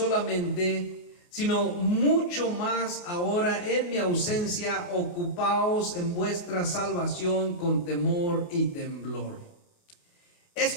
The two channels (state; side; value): late; right; 28 ms